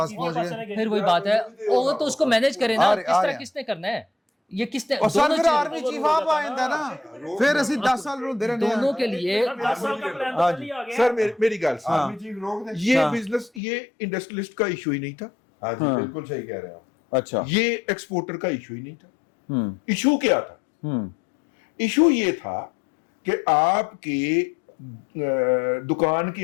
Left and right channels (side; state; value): right; drops out; at 13.6 s